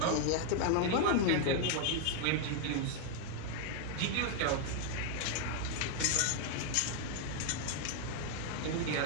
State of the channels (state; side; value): different; both; correlation 0.00